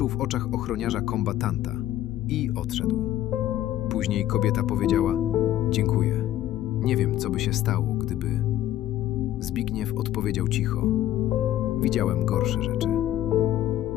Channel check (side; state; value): right; quieter; 13.1 dB